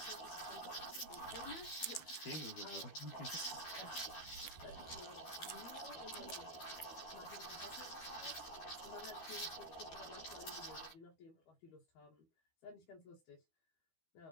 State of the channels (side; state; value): right; late; 12 ms